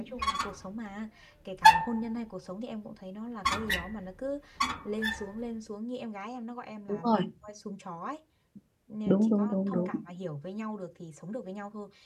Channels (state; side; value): identical; both; correlation 1.00